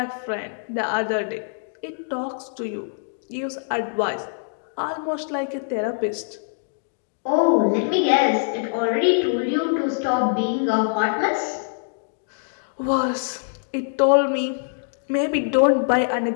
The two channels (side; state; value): right; silent; digital silence